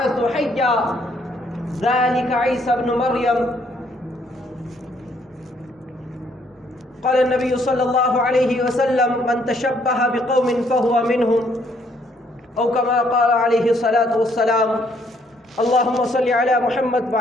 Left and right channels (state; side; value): normal; both; correlation 0.67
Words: حيا ذلك عيسى ابن مريم قال النبي صلى الله عليه وسلم من تشبه بقوم فهو منهم أو كما قال عليه الصلاة والسلام اللهم صل على محمد